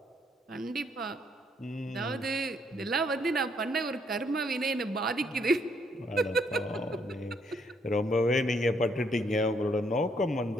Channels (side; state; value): both; normal; correlation 0.71